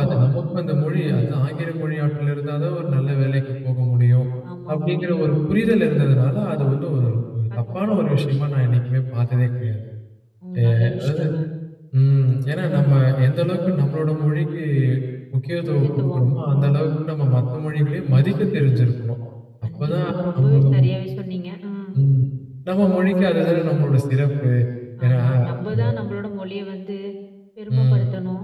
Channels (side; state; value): both; identical; correlation 1.00